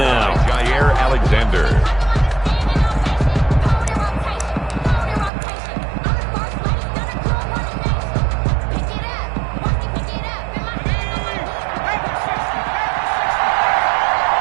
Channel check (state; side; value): drops out; left; at 5.3 s